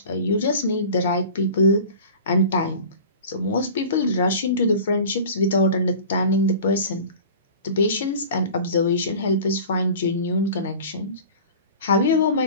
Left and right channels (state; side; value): inverted; both; correlation -0.40